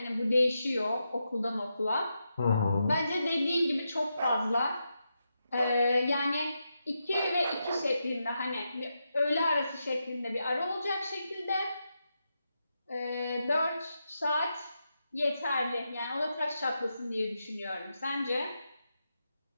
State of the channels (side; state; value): both; inverted; correlation -0.86